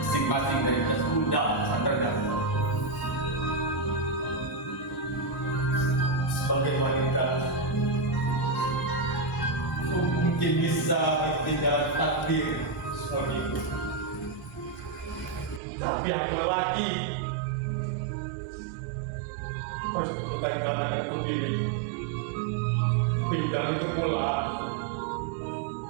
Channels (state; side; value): drops out; left; at 15.6 s